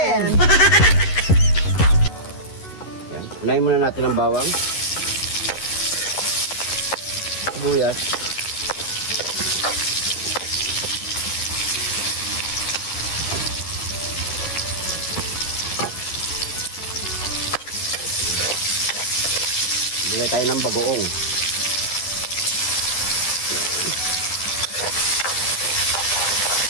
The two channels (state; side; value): late; right; 11 ms